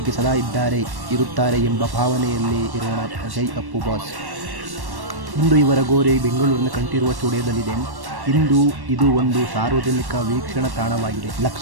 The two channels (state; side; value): late; left; 1.1 ms